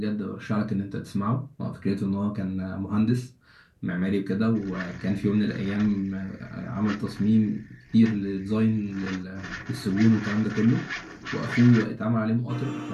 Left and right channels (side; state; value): both; identical; correlation 1.00